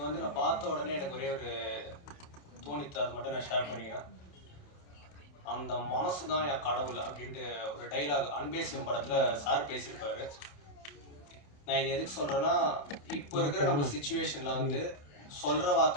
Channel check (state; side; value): late; right; 28 ms